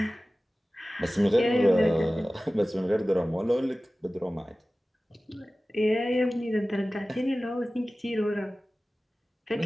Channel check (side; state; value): both; normal; correlation 0.97